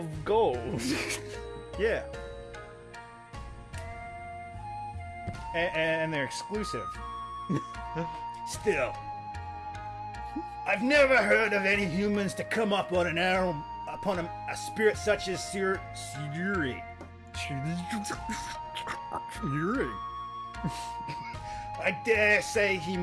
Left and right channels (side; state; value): both; identical; correlation 1.00